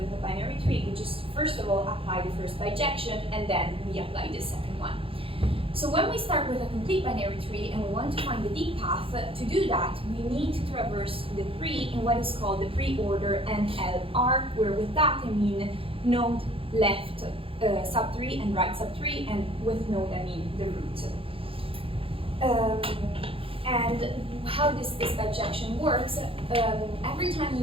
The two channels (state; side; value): late; left; 0.27 ms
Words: a binary tree, we just first of all apply the first bijection and then we apply the second one. So when we start with a complete binary tree and we want to find the Dyck path, to do that, we need to traverse the tree in what is called the pre-order NLR, where with that I mean node left sub-tree and right sub-tree, and with node I mean the root. And how this bijection works, every time we